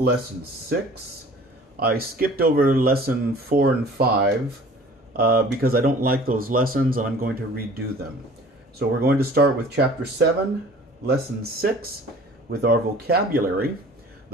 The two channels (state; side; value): normal; both; correlation 0.48